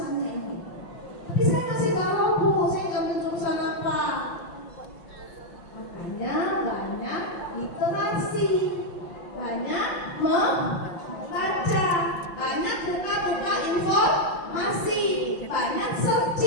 ini. Tapi saya kasih tahu Bu, saya ngambil jurusan apa? Makanya banyak literasi, banyak membaca, banyak buka-buka informasi, banyak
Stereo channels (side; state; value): right; late; 5.8 ms